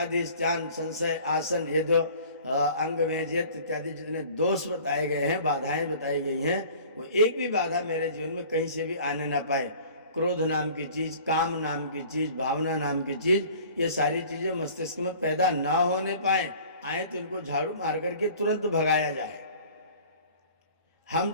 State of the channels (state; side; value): inverted; both; correlation -0.48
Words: स्नान, संशय, आसन, ये जो अंग मेजियत इत्यादि जितने दोष बताए गए हैं, बाधाएं बताई गई हैं, वो एक भी बाधा मेरे जीवन में कहीं से भी आने ना पाए। क्रोध नाम की चीज, काम नाम की चीज, भावना नाम की चीज, ये सारी चीजें मस्तिष्क में पैदा ना होने पाए, आए तो इनको झाड़ू मार करके तुरंत भगाया जाए। हम